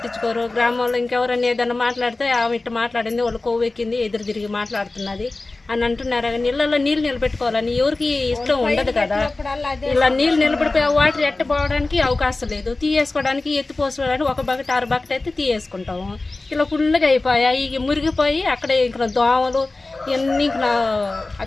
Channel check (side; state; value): right; quieter; 3.2 dB